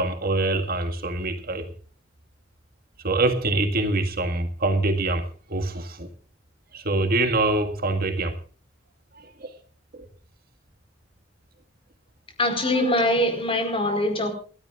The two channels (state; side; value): normal; both; correlation 0.34